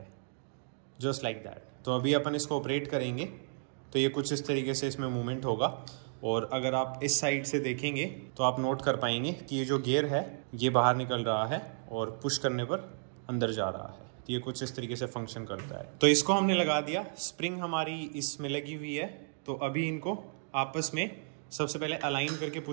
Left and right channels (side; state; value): left; silent; digital silence